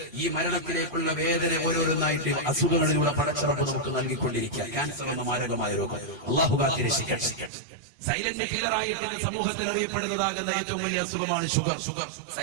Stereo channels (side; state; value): left; drops out; at 7.5 s